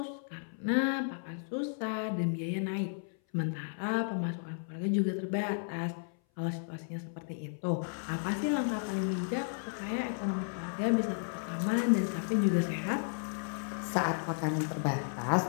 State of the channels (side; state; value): right; silent; 55 dB below the other